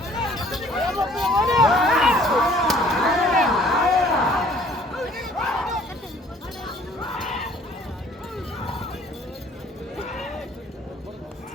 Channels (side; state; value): both; normal; correlation 0.56